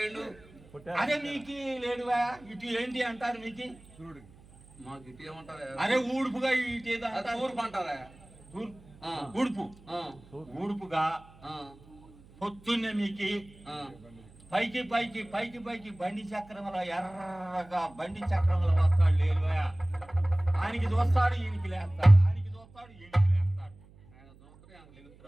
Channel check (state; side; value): noise; right; hum, 24 dB below the sound